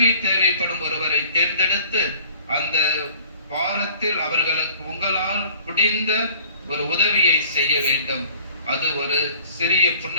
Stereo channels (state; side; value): inverted; both; correlation -0.51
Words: தேவைப்படும் ஒருவரை தேர்ந்தெடுத்து அந்த வாரத்தில் அவர்களுக்கு உங்களால் முடிந்த ஒரு உதவியை செய்ய வேண்டும். அது ஒரு சிறிய